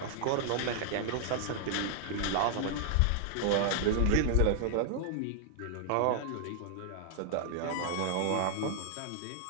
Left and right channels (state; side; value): different; both; correlation 0.00